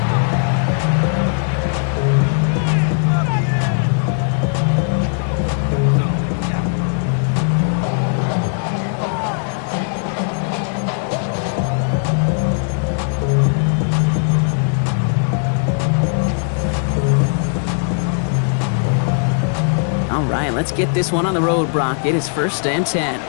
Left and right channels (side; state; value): right; silent; digital silence